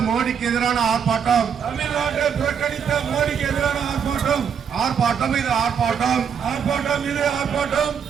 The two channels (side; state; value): left; quieter; 7.3 dB